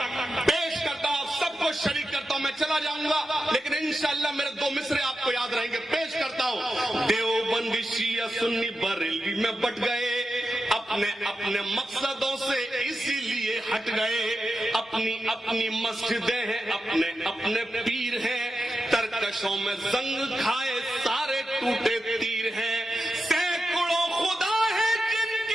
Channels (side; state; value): both; normal; correlation 0.90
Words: पेश करता हूं, सबको शरीक करता हूं। मैं चला जाऊंगा लेकिन इंशाअल्लाह मेरे 2 मिसरे आपको याद रहेंगे। पेश करता हूं। देवबंदी शिया सुन्नी बरेलवी में बट गए, अपने अपने मकसदों से इसीलिए हट गए। अपनी अपनी मस्जिदें हैं, अपने अपने पीर हैं, तरकशों में जंग खाए सारे टूटे तीर हैं। सैकड़ों खुदा है